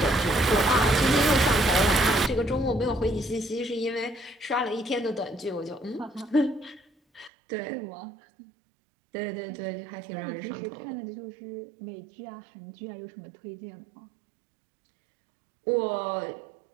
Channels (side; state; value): left; drops out; at 7.3 s